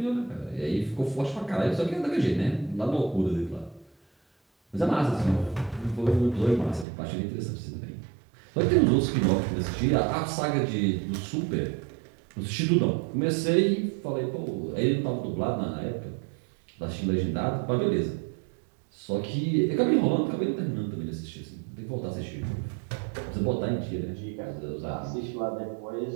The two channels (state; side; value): drops out; left; at 6.9 s